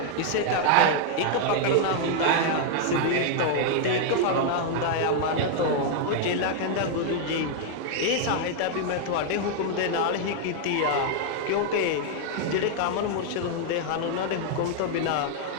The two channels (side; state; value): both; different; correlation 0.00